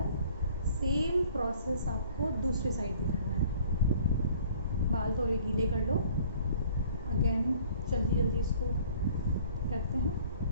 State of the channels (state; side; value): inverted; both; correlation -0.54